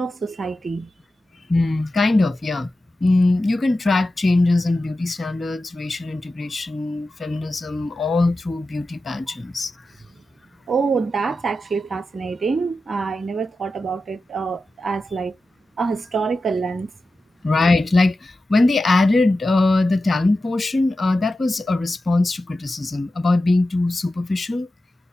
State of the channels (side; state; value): both; normal; correlation 0.92